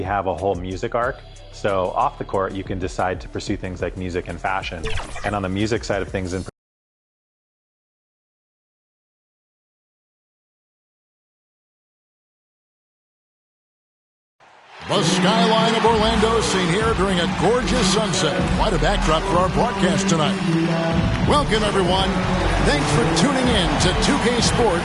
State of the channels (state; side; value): identical; both; correlation 1.00